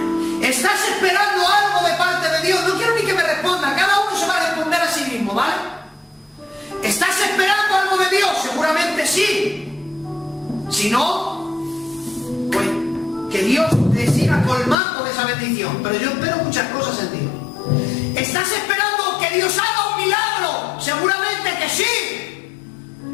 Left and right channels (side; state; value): right; drops out; at 14.8 s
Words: ¿Estás esperando algo de parte de Dios? No quiero ni que me responda. Cada uno se va a responder a sí mismo, ¿vale? ¿Estás esperando algo de Dios? Seguramente sí. Si no, pues que Dios te siga colmando de esa bendición. Pero yo espero muchas cosas en Dios. ¿Estás esperando que Dios haga un milagro? Seguramente que sí.